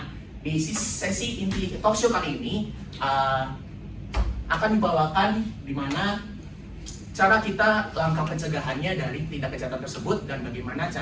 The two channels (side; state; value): both; identical; correlation 1.00